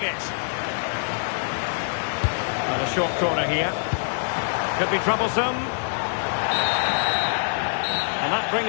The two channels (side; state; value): right; silent; digital silence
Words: it. And a short corner here. Could be troublesome. And that